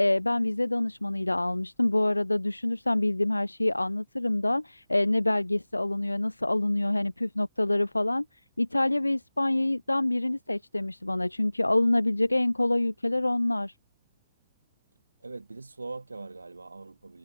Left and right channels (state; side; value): inverted; both; correlation -1.00